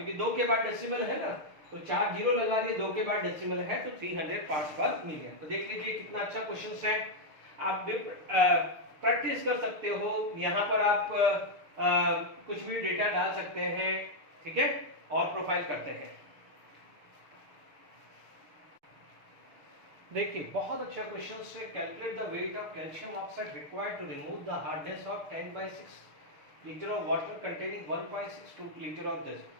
2 के बाद डेसिमल है ना, तो 4 जीरो लगा दिए, 2 के बाद डेसिमल है तो 300 पार्ट्स पर मिलियन। तो देख लीजिए कितना अच्छा क्वेश्चन है, आप प्रैक्टिस कर सकते हो, यहाँ पर आप कुछ भी डेटा डाल सकते हैं। ठीक है, और प्रोफाइल करते हैं। देखिए बहुत अच्छा क्वेश्चन है, calculate the weight of calcium oxide required to remove the hardness of 10/6 litre of water containing 1.62 litre of this.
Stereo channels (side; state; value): left; late; 6.7 ms